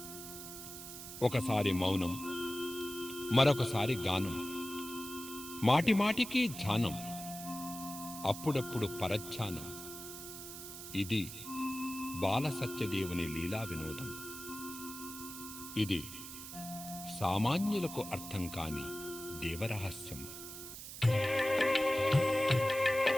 ఒకసారి మౌనం, మరొకసారి గానం, మాటిమాటికి ధ్యానం, అప్పుడప్పుడు పరధ్యానం. ఇది బాల సత్యదేవుని లీలా వినోదం. ఇది సామాన్యులకు అర్థం కాని దేవరహస్యం.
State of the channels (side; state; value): right; noise; hiss, 11 dB below the sound